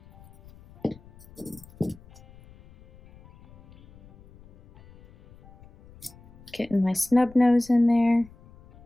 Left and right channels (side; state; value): left; noise; rumble, 25 dB below the sound